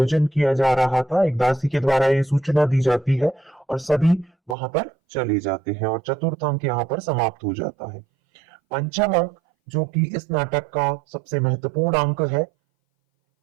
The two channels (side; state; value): left; drops out; at 4.5 s